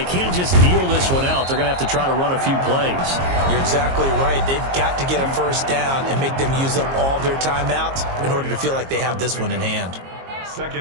can't just kneel this one out. They're going to have to try to run a few plays. You're exactly right. They've got to get a first down and make them use up all their timeouts in order to feel like they have this one in hand.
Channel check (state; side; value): late; left; 22 ms